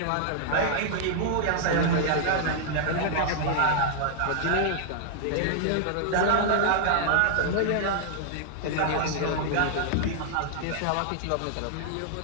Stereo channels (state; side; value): different; both; correlation -0.01